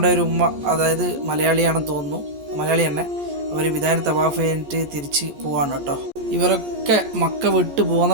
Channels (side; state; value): left; late; 14 ms